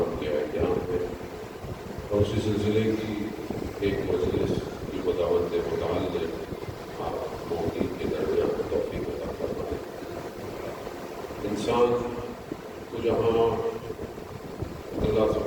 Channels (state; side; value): identical; both; correlation 1.00